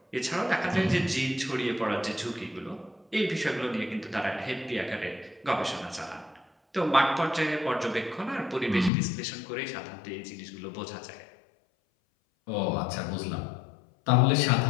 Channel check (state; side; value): drops out; right; at 8.9 s